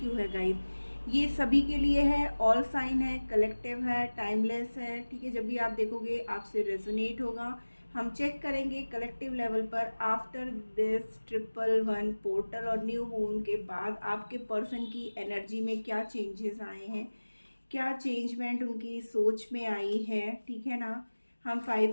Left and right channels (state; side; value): inverted; both; correlation -1.00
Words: यू है गाइज। ये सभी के लिए है, ऑल साइन है, कलेक्टिव है, टाइमलेस है। ठीक है, जब भी आप देखोगे आपसे रेजोनेट होगा। हम चेक करेंगे कलेक्टिव लेवल पर आफ्टर दिस 111 पोर्टल और न्यू मून के बाद आपके पर्सन की एनर्जी में क्या चेंजेस आए हैं, क्या चेंजमेंट उनकी सोच में आई है। ठीक है ना। हम